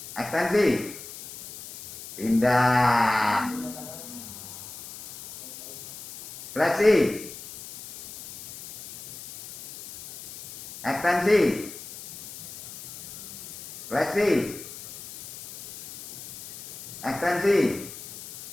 Ekstensi. Pindah. Fleksi. Ekstensi. Fleksi. Ekstensi.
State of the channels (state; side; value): noise; left; hiss, 13 dB below the sound